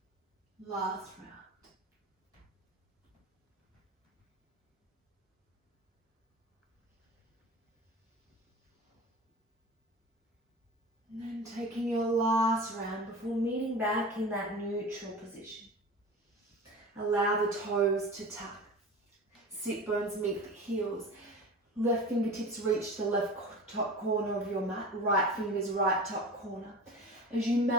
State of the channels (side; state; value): both; normal; correlation 0.34